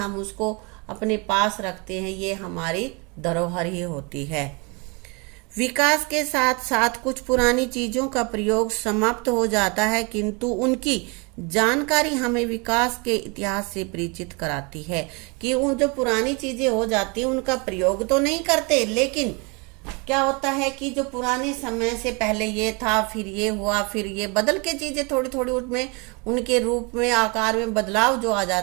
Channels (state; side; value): quieter; left; 30.4 dB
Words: उसको अपने पास रखते हैं। ये हमारी धरोहर ही होती है। विकास के साथ साथ कुछ पुरानी चीजों का प्रयोग समाप्त हो जाता है, किंतु उनकी जानकारी हमें विकास के इतिहास से परिचित कराती है। कि उन जो पुरानी चीजें हो जाती हैं उनका प्रयोग तो नहीं करते, लेकिन क्या होता है कि जो पुराने समय से पहले ये था, फिर ये हुआ, फिर ये बदल के चीजें थोड़ी थोड़ी उसमें उनके रूप में आकार में बदलाव जो आ